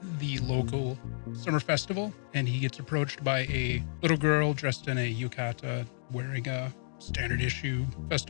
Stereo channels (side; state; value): right; silent; digital silence